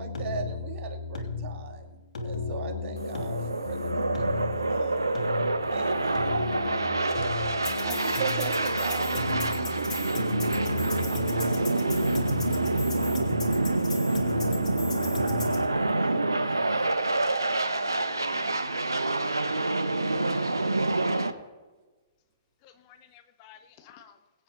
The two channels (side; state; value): both; inverted; correlation -0.82